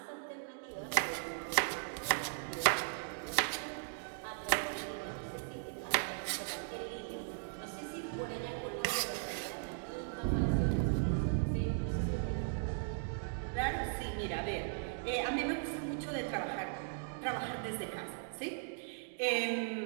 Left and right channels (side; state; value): left; silent; digital silence